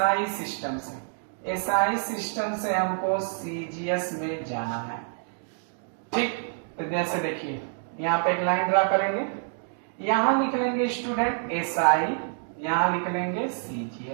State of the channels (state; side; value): silent; left; digital silence